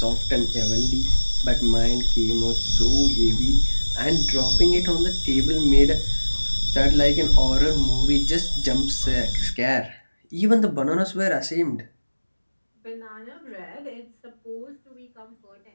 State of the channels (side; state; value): both; inverted; correlation -1.00